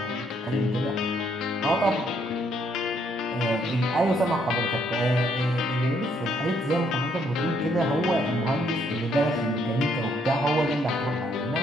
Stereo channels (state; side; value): normal; both; correlation 0.70